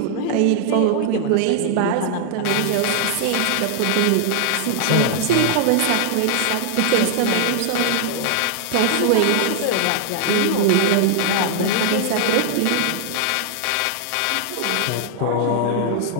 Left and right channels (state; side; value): different; both; correlation -0.01